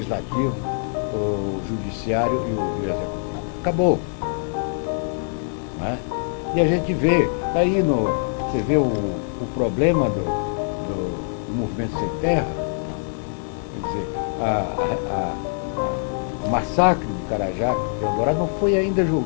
o judiciário e o executivo. Acabou. Não é? E a gente vê, está aí você vê o problema do movimento sem terra, quer dizer, o massacre de Carajá e Eldorado não foi ainda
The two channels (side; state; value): right; silent; 63 dB below the other